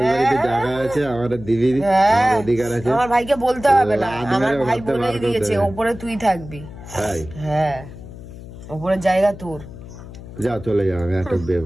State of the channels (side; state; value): left; noise; hum, 14 dB below the sound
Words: বাড়িতে জায়গা আছে, আমার দিদি অধিকার আছে। আমার ভাইকে বলতে হবে না, আমার ভাই বলেই দিয়েছে ওপরে তুই থাকবি। হ্যাঁ, ওপরের জায়গা তোর। যাও চলে যাও, আমি একটা বিয়ে